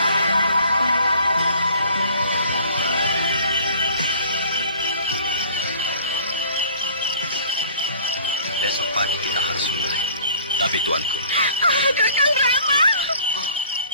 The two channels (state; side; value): inverted; both; correlation -0.51